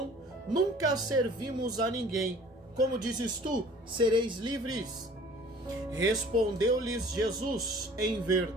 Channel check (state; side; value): normal; both; correlation 0.49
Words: nunca servimos a ninguém. Como dizes tu, sereis livres? Respondeu-lhes Jesus: em